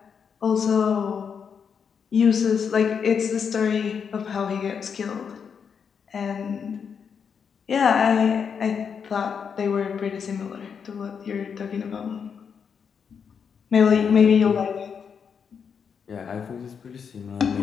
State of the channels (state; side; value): quieter; right; 6.7 dB